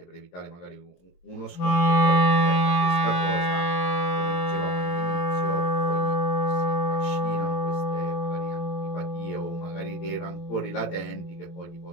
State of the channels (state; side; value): late; right; 23 ms